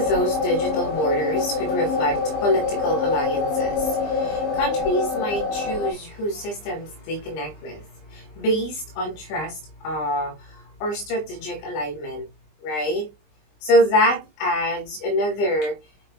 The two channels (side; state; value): right; late; 20 ms